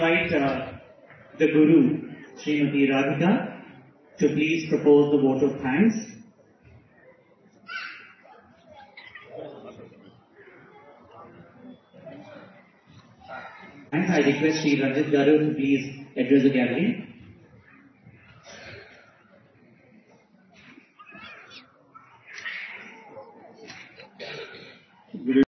the Guru, Srimati Radhika, to please propose the vote of thanks. And I request Sri Ranjit Garu to please address the gathering.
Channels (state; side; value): identical; both; correlation 1.00